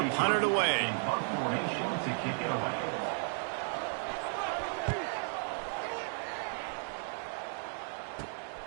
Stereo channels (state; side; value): silent; left; 55 dB below the other